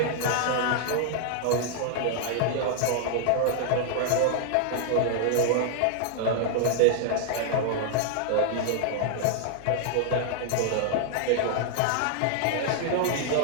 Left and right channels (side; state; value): both; different; correlation -0.01